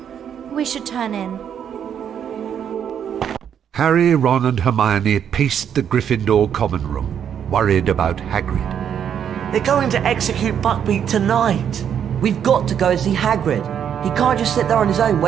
We should turn in. Harry, Ron and Hermione paced the Gryffindor common room, worried about Hagrid. They're going to execute Buckbeak tonight. We've got to go and see Hagrid. He can't just sit there on his own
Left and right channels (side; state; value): left; quieter; 8.6 dB